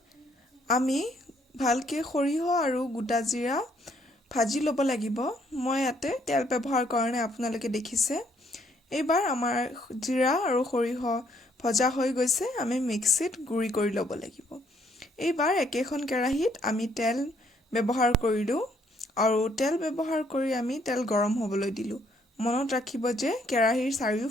আমি ভালকে সৰিয়হ আৰু গোটা জিৰা ভাজি ল'ব লাগিব মই ইয়াতে তেল ব্যৱহাৰ কাৰণে আপোনালোকে দেখিছে এইবাৰ আমাৰ জিৰা আৰু সৰিয়হ ভজা হৈ গৈছে আমি মিক্সিত গুৰি কৰি ল'ব লাগিব এইবাৰ একেখন কেৰাহীত আমি তেল ব্যৱহাৰ কৰিলো আৰু তেল ব্যৱহাৰ কৰি আমি তেল গৰম হ'বলৈ দিলো মনত ৰাখিব যে কেৰাহীৰ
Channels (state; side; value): normal; both; correlation 0.68